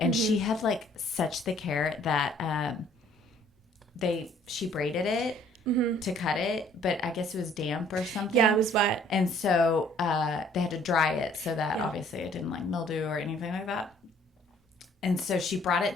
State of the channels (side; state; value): both; normal; correlation 0.59